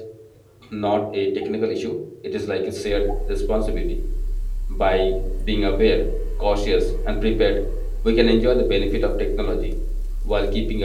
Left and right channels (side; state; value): both; identical; correlation 1.00